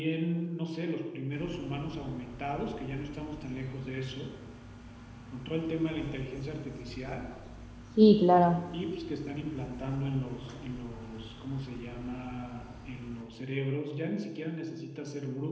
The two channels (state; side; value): identical; both; correlation 1.00